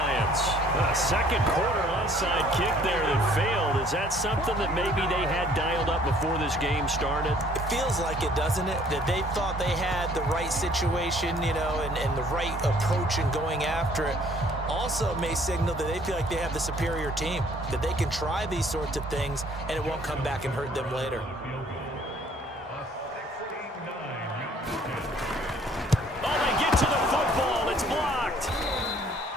A second quarter onside kick there that failed. Is that something that maybe they had dialed up before this game started? It feels like it, doesn't it? That they thought they had the right situation, you know, and the right approach in going after it. Also may signal that they feel like they have the superior team, that they can try these sorts of things and it won't come back and hurt them later.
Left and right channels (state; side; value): normal; both; correlation 0.59